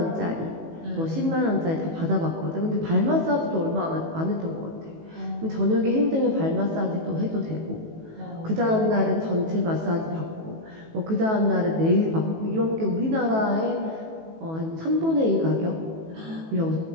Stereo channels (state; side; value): late; left; 18 ms